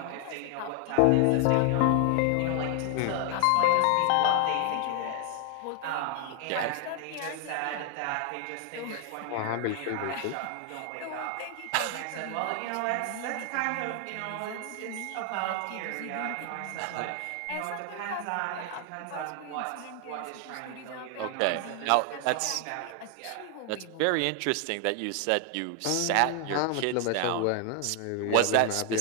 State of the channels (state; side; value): different; both; correlation 0.00